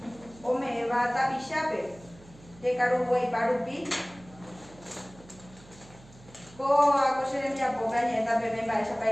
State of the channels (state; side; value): noise; right; hum, 23 dB below the sound